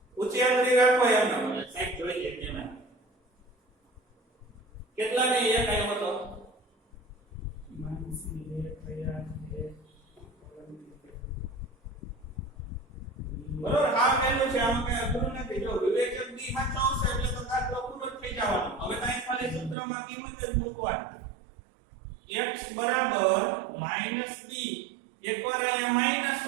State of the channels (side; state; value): left; drops out; at 19.8 s